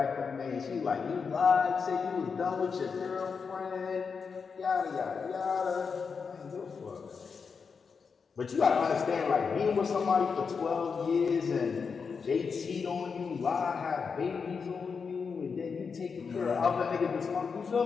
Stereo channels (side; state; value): right; quieter; 5.6 dB